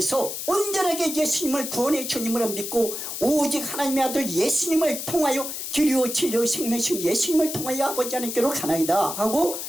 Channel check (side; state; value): left; noise; hiss, 6 dB below the sound